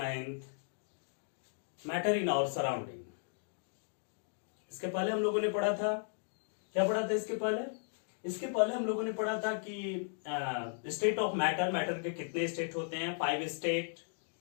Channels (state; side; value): silent; right; digital silence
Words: matter in our surrounding. इसके पहले हम लोगों ने पढ़ा था, क्या पढ़ा था इसके पहले हम लोगों ने पढ़ा था कि स्टेट ऑफ मैटर के कितने स्टेट होते हैं, 5 स्टेट,